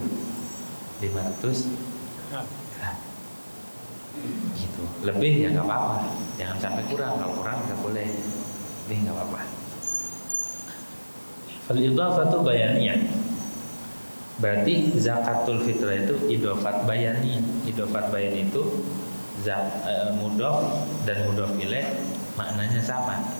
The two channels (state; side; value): inverted; both; correlation -1.00